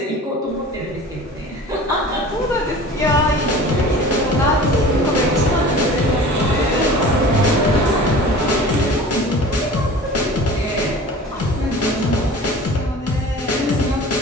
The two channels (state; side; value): normal; both; correlation 0.40